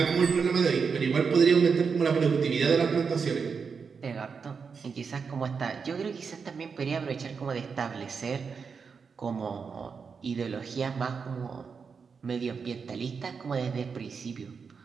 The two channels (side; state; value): left; quieter; 5.7 dB